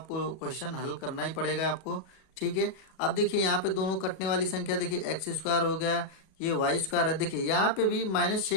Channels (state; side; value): late; right; 37 ms